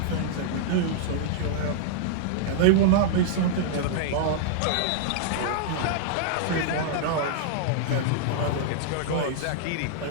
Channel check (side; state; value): both; different; correlation -0.01